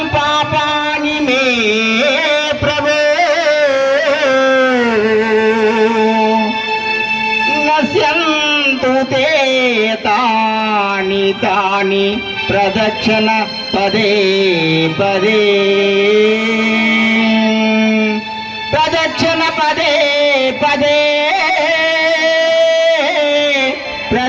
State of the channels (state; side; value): identical; both; correlation 1.00